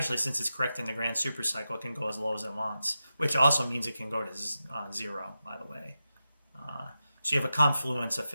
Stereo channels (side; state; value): both; inverted; correlation -0.91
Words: since it's correcting the grand super cycle, it can go as low as it wants, which also means it can go to 0, by the way. So you have a confluence of